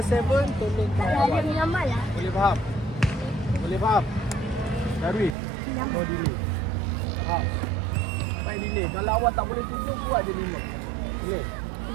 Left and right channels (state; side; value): drops out; left; at 5.4 s